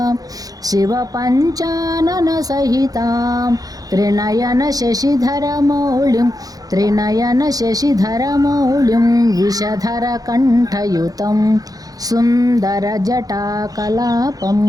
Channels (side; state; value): left; late; 0.18 ms